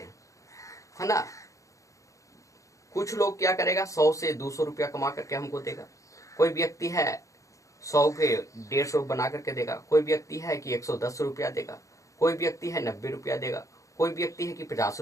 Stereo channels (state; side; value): late; right; 0.15 ms